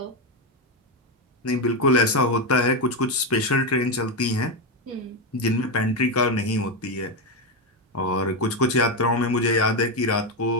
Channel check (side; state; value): both; normal; correlation 0.09